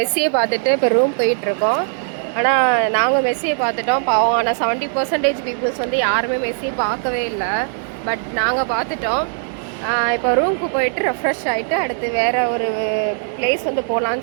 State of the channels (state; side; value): silent; left; digital silence